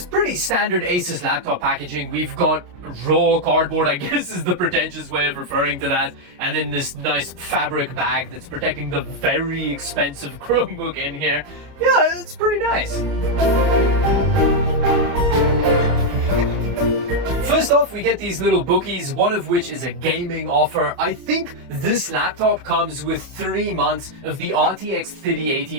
pretty standard Asus laptop packaging. We've got raw cardboard, I guess is the pretentious way of referring to that, and then this nice fabric bag that's protecting the very expensive Chromebook in here. Yeah, it's pretty nice. First off, we get these little bookies, one of which is a gaming offer. I think this laptop comes with 3 months of the RTX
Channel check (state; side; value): late; left; 27 ms